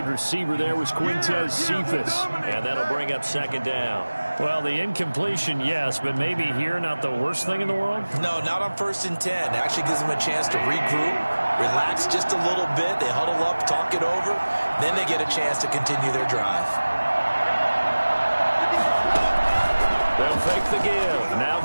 receiver there was Quintez Cephas. And that'll bring up 2nd down. Well, the incompletion, yes, but maybe here not the worst thing in the world? No, not on 1st and 10. It actually gives them a chance to regroup, relax just a little bit. They huddle up, talk it over. Then they get a chance to continue their drive. They'll fake the give. Now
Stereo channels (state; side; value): inverted; both; correlation -1.00